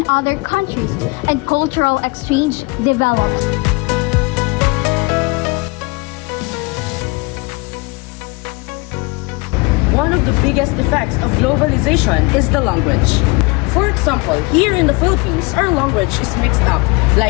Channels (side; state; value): right; quieter; 27.6 dB